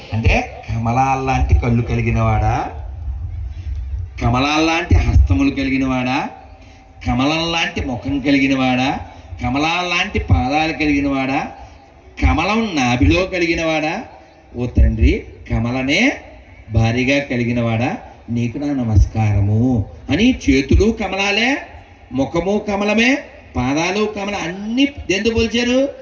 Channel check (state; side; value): identical; both; correlation 1.00